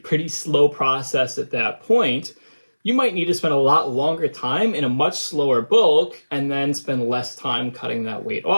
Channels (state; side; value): inverted; both; correlation -1.00